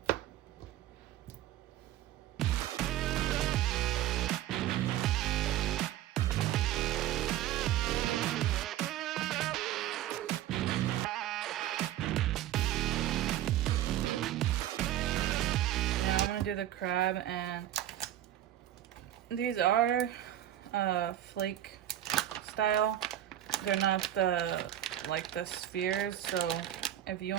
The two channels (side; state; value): left; quieter; 12.5 dB